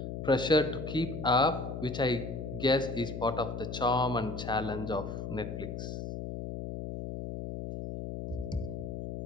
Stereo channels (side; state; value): left; noise; hum, 6 dB below the sound